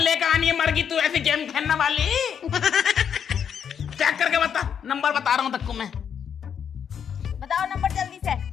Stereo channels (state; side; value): quieter; right; 7.9 dB